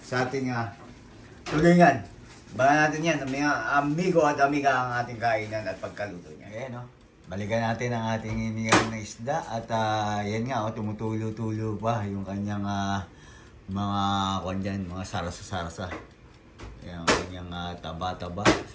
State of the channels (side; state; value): both; identical; correlation 1.00